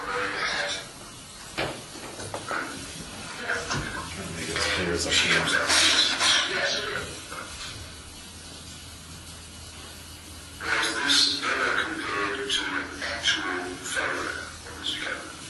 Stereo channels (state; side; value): identical; both; correlation 1.00